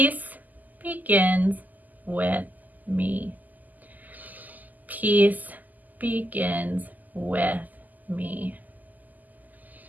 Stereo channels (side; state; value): left; late; 0.082 ms